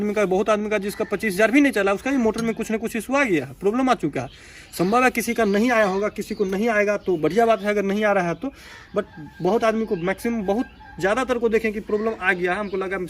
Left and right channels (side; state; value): both; identical; correlation 1.00